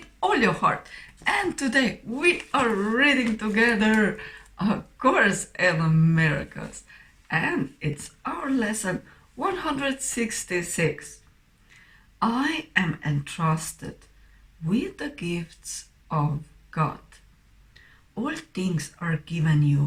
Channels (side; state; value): both; identical; correlation 1.00